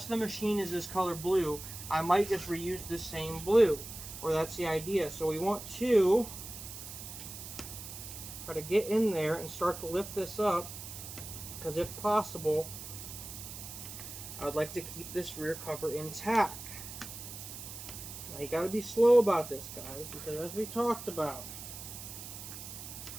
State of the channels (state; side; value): noise; right; hiss, 11 dB below the sound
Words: of the machine is this color blue, I might just reuse this same blue, or that's the idea. So we want to try to get in there and start to lift this up, because if possible, I would like to keep this rear cover intact. Now you got to be slow about this, guys, because as we talked about,